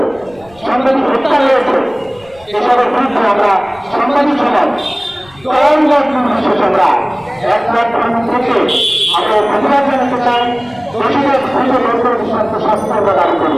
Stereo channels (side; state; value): left; noise; rumble, 26 dB below the sound